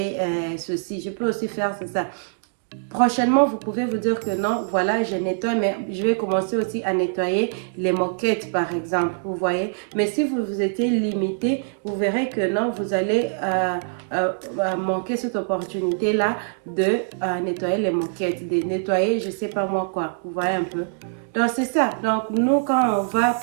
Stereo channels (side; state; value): left; silent; digital silence